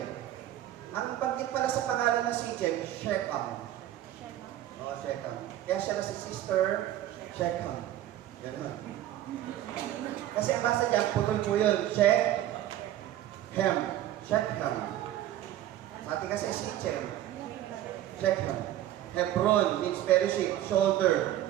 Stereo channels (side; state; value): left; quieter; 12.9 dB